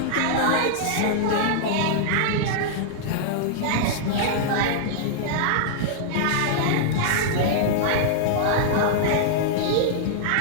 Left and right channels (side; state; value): both; different; correlation -0.01